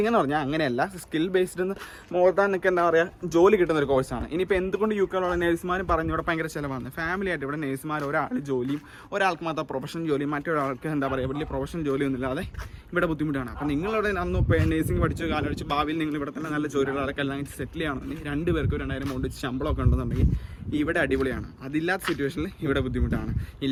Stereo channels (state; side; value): identical; both; correlation 1.00